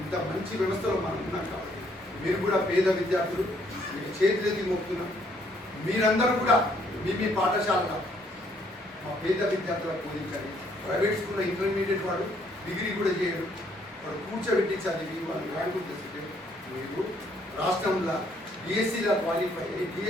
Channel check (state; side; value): normal; both; correlation 0.67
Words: ఇంత మంచి వ్యవస్థలో మనం ఉన్నాం కాబట్టి మీరు కూడా పేద విద్యార్థులు మీకు చేతులెత్తి మోపుతున్నాం మీరందరూ కూడా మీ పాఠశాలలో మా పేద విద్యార్థులకు బోధించండి. ప్రైవేట్ స్కూల్లో ఇంటర్మీడియట్ వాడు డిగ్రీ కూడా చేయడు వాడు కూర్చోబెట్టి చదివి వాళ్ళు ర్యాంకులు తెస్తే మీరు రాష్ట్రంలో డిఎస్సీలో క్వాలిఫై అయ్యి